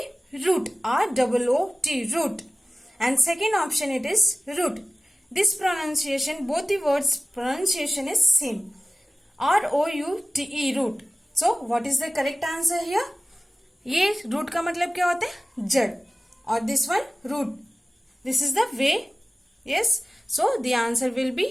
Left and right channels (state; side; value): normal; both; correlation 0.97